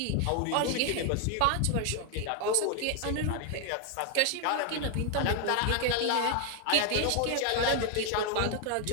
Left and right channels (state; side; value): different; both; correlation 0.00